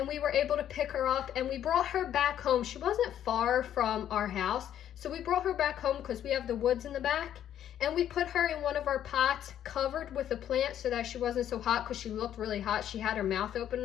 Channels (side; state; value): right; quieter; 10.6 dB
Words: we were able to pick her up, and we brought her back home. She wasn't far from our house, so we brought her back home because we have the woods in the back. And we put her in one of our pots covered with a plant so that she wasn't so hot, because she looked really hot. She had her mouth open